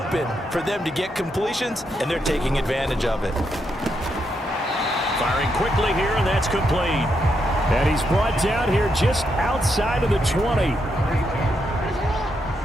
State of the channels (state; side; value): normal; both; correlation 0.80